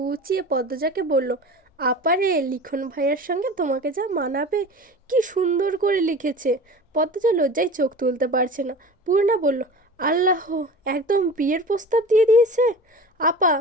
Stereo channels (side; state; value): both; normal; correlation 0.36